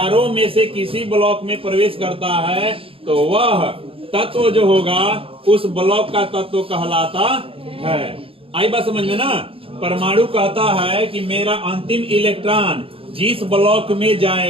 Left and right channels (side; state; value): left; late; 0.27 ms